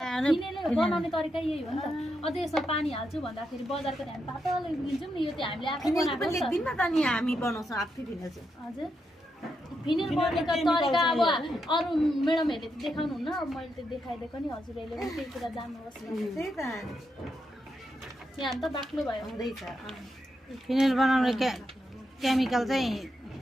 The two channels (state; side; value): normal; both; correlation 0.83